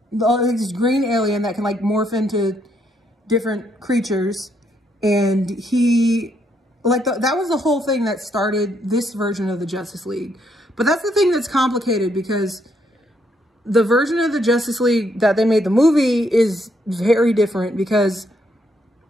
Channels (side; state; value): both; normal; correlation 0.74